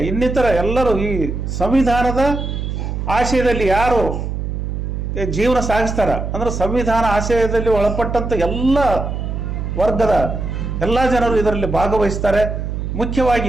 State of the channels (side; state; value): right; noise; hum, 4 dB below the sound